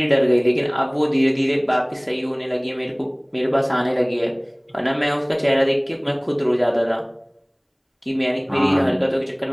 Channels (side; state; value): both; identical; correlation 1.00